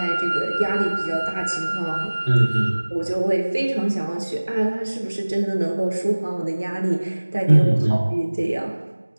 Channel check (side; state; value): both; inverted; correlation -1.00